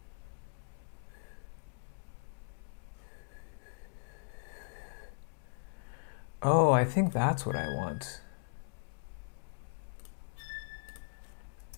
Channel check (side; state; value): right; silent; digital silence